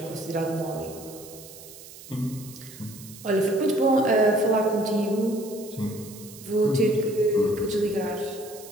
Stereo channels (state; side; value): noise; right; hiss, 17 dB below the sound